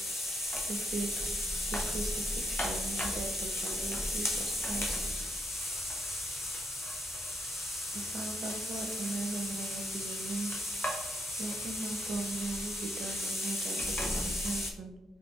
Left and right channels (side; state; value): both; normal; correlation 0.77